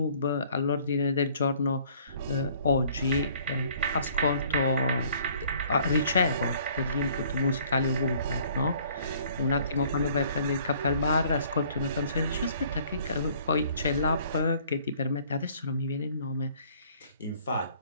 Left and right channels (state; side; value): inverted; both; correlation -0.58